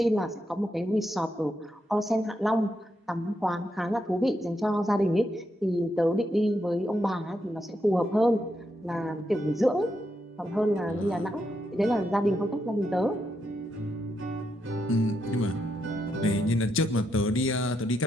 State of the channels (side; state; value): both; normal; correlation 0.81